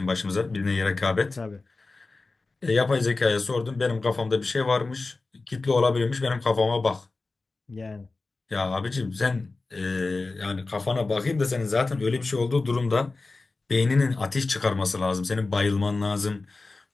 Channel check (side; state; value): right; quieter; 3.6 dB